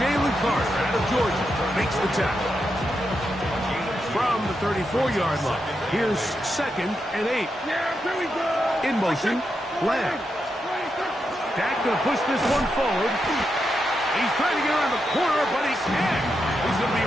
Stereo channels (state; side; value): normal; both; correlation 0.85